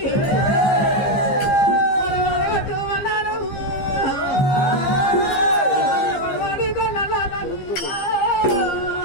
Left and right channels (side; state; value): right; late; 15 ms